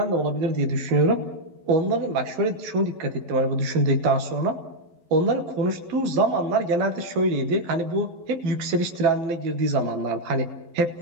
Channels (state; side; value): late; left; 11 ms